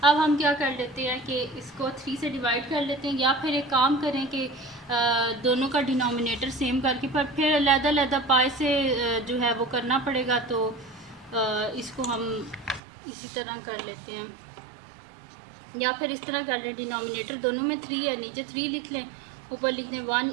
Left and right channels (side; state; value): left; drops out; at 12.8 s